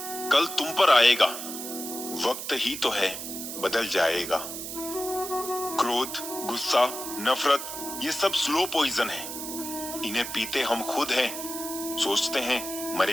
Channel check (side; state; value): right; noise; hiss, 7 dB below the sound